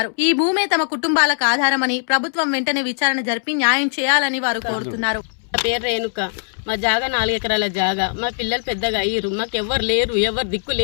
ఈ భూమే తమ కుటుంబాలకు ఆధారమని ప్రభుత్వం వెంటనే విచారణ జరిపి న్యాయం చేయాలని వారు కోరుతున్నారు. పేరు రేణుక. మా జాగా 4 ఎకరాల జాగా. మా పిల్లలు పెద్దగా అయ్యారు. మాకు ఎవరు లేరు, ఎవరు దిక్కు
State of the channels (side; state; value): right; silent; 66 dB below the other